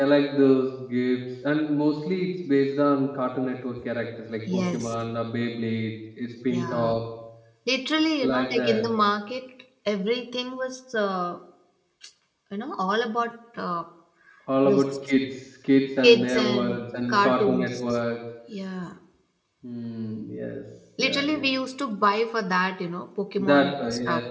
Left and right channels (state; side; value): identical; both; correlation 1.00